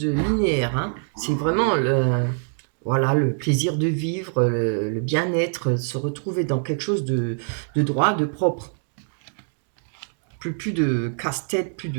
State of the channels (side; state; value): left; silent; digital silence